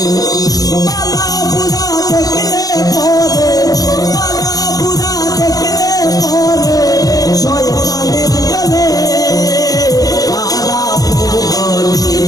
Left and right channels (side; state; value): right; late; 0.18 ms